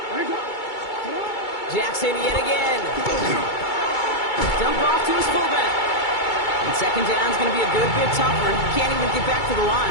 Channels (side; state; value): right; late; 2.3 ms